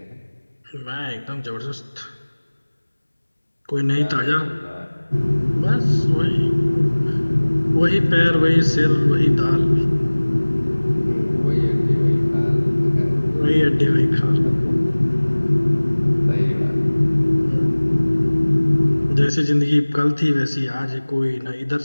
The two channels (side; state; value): both; inverted; correlation -1.00